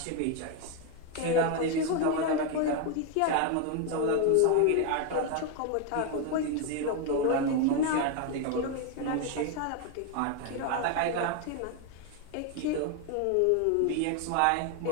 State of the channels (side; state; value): both; different; correlation 0.01